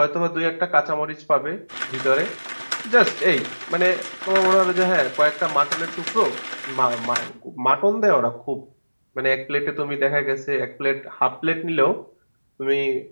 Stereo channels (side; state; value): both; inverted; correlation -1.00